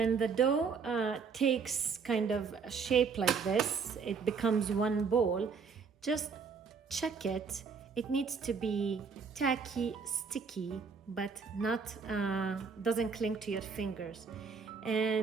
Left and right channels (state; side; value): quieter; left; 5.6 dB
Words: the dough takes kind of a shape like this, it becomes one ball, just check it. It needs to be tacky, sticky, but not doesn't cling to your fingers.